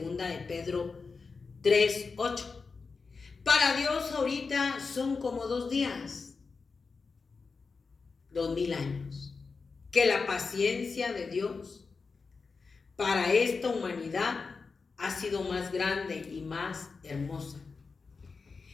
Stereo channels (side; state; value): right; quieter; 4.6 dB